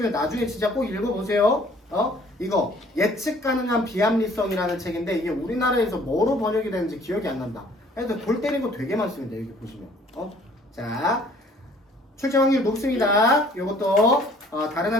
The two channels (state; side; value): normal; both; correlation 0.56